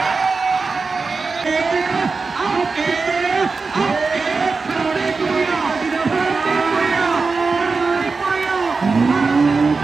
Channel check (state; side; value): quieter; left; 4.3 dB